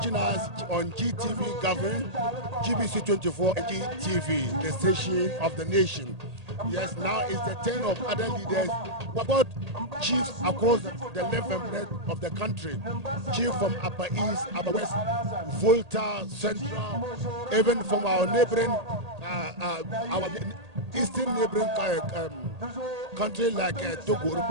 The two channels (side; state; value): left; late; 1.8 ms